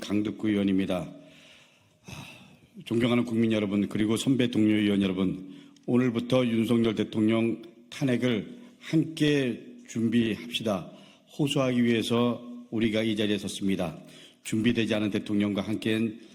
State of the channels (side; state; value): both; identical; correlation 1.00